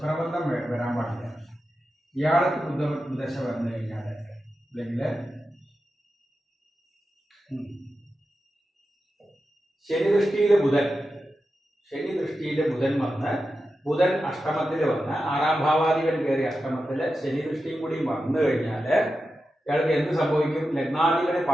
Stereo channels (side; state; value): both; normal; correlation 0.91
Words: വരാൻ പാടില്ല. ഇയാൾക്ക് ബുധദശ വന്നു കഴിഞ്ഞാല്, അല്ലെങ്കിൽ ശനി ദൃഷ്ടിയിലെ ബുധൻ വന്ന്, ബുധൻ അഷ്ടമത്തിൽ വന്ന് 6ാം ഭാവാധിപൻ കയറി അഷ്ടമത്തില് ശനി ദൃഷ്ടിയും കൂടി വന്നു കഴിഞ്ഞാല് ഇയാൾക്ക് എന്ത് സംഭവിക്കും? ലഗ്നാധിപന്